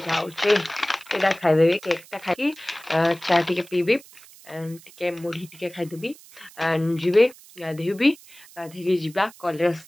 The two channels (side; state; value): right; noise; hiss, 22 dB below the sound